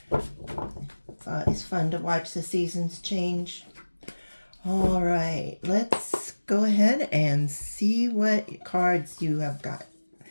It's always fun to watch the seasons change. All right, let's go ahead and see what cards you have got.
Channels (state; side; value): inverted; both; correlation -1.00